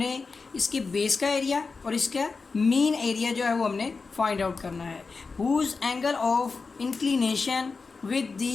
इसके बेस का एरिया और इसका मीन एरिया जो है वो हमने फाइंड आउट करना है। Whose angle of inclination with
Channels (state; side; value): quieter; right; 4.4 dB